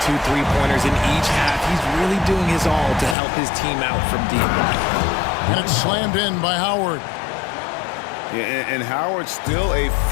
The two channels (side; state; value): right; drops out; at 3.2 s